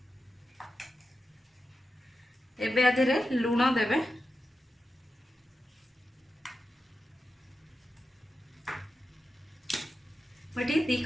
एबे आधेरे लूण देबे। मटी 2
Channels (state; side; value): normal; both; correlation 0.91